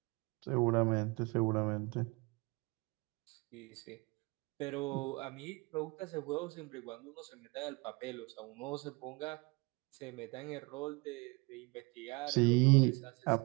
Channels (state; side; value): quieter; left; 27.5 dB